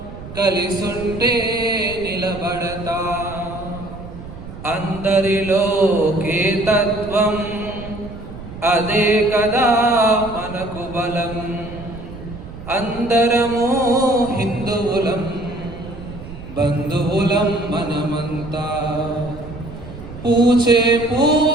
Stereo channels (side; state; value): right; noise; rumble, 13 dB below the sound